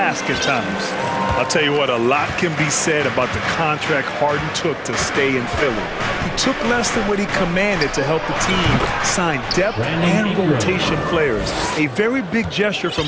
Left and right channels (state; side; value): identical; both; correlation 1.00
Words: at times. I'll tell you what, a lot can be said about the contract Harden took to stay in Philly. He took less than what he commanded to help the team sign depth and rotation players. A very big gesture